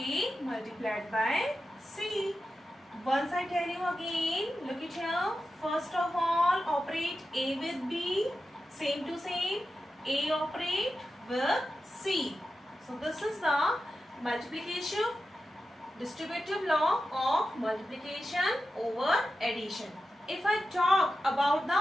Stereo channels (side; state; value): both; normal; correlation 0.91